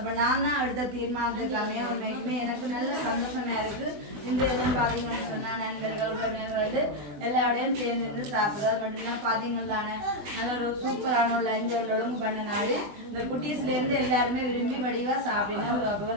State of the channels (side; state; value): left; late; 20 ms